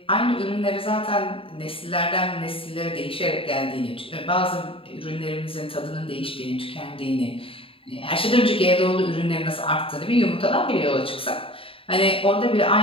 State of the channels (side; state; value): right; late; 0.26 ms